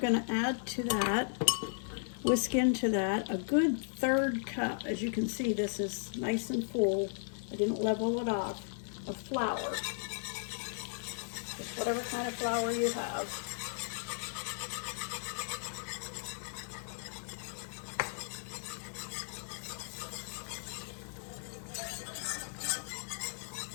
to add to that, whisk into that, a good 1/3 cup. As you can see, this is nice and full. I didn't level it off, of flour. Just whatever kind of flour you have.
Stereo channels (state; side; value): silent; right; digital silence